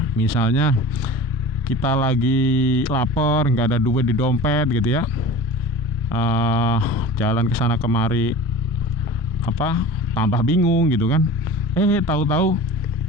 misalnya kita lagi lapar, nggak ada duit di dompet gitu ya, jalan ke sana kemari, tambah bingung gitu kan. Tahu-tahu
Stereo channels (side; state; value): both; normal; correlation 0.37